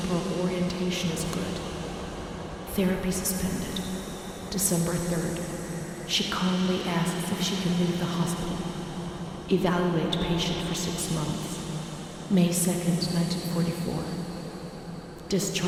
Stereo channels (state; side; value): identical; both; correlation 1.00